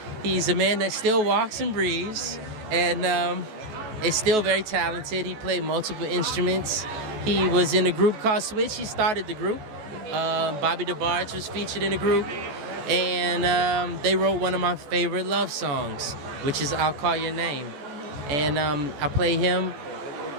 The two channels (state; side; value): late; left; 14 ms